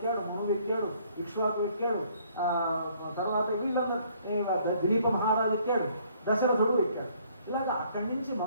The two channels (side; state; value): both; inverted; correlation -0.62